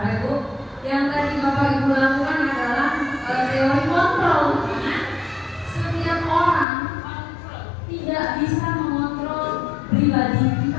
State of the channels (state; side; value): drops out; right; at 6.7 s